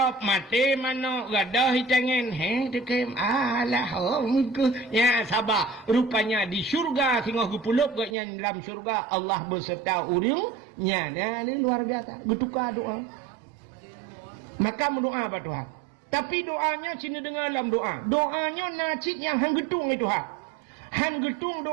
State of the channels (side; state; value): left; drops out; at 8.2 s